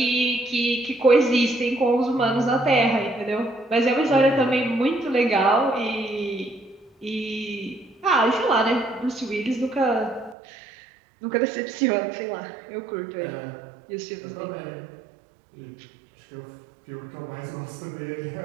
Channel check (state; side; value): drops out; left; at 10.4 s